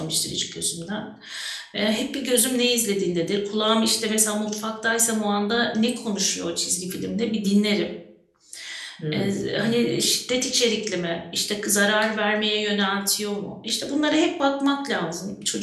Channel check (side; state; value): both; identical; correlation 1.00